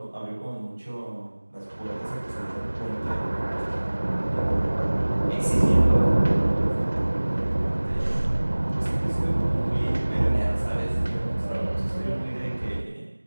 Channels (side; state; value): both; inverted; correlation -1.00